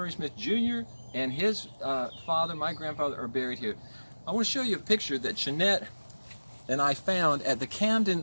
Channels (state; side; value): inverted; both; correlation -1.00